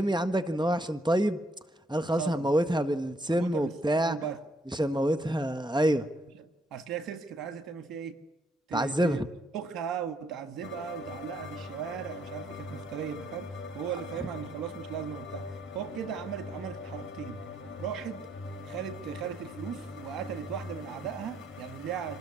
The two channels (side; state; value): both; normal; correlation 0.73